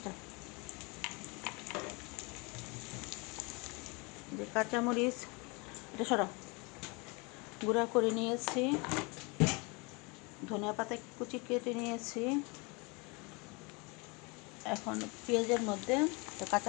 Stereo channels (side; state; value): right; quieter; 29.1 dB